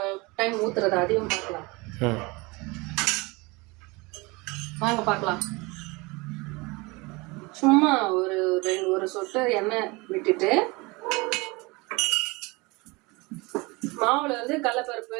டைம் ஊத்துறத அதையும் பார்க்கலாம். வாங்க பார்க்கலாம். சும்மா ஒரு சொட்டு எண்ணெய் விட்டுட்டு மாவுல வந்து கடலைப்பருப்பு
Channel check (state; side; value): quieter; left; 25.2 dB